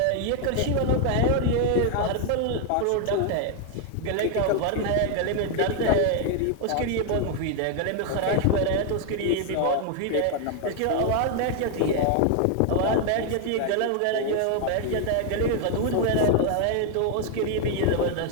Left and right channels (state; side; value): different; both; correlation 0.00